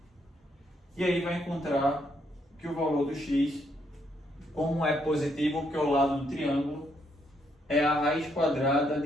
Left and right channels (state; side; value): normal; both; correlation 0.74